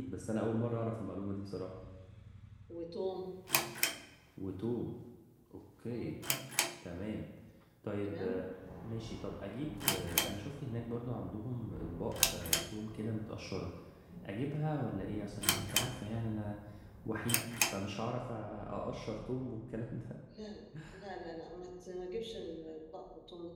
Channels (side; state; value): both; identical; correlation 1.00